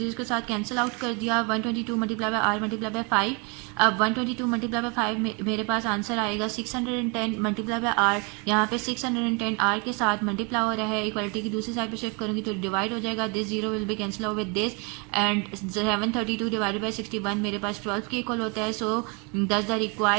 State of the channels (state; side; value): quieter; left; 32.4 dB